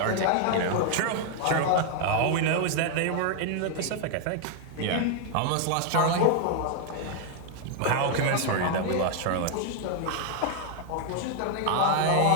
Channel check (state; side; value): different; both; correlation 0.00